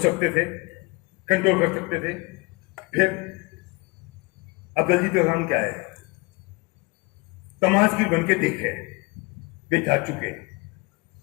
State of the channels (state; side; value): quieter; right; 26.1 dB